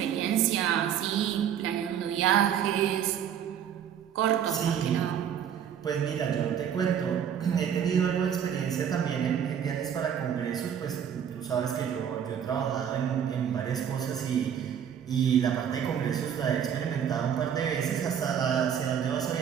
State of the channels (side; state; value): left; quieter; 8.7 dB